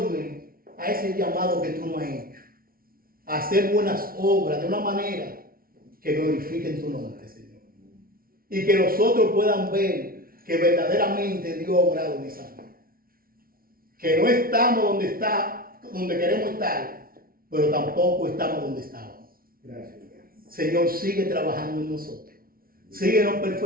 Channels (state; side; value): late; left; 0.43 ms